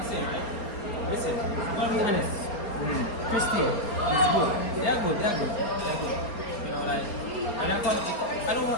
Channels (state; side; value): late; right; 4.3 ms